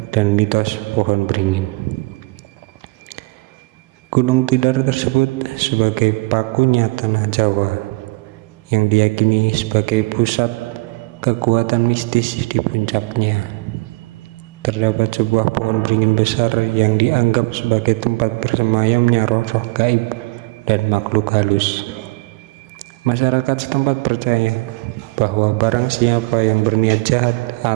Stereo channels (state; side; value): quieter; left; 24.3 dB